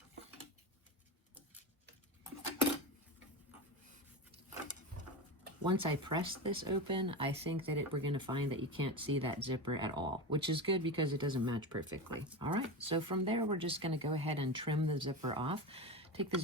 Once I press this open, I think that we're going to find that you can't see that zipper at all, which is good because it doesn't match perfectly. All right, so from there, we're just going to go ahead and trim the zipper off. Take the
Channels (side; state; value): both; normal; correlation 0.21